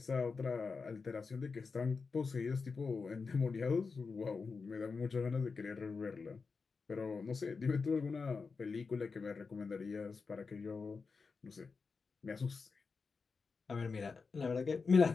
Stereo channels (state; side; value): quieter; right; 4.8 dB